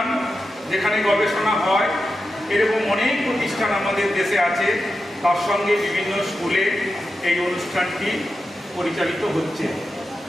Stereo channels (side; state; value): both; normal; correlation 0.90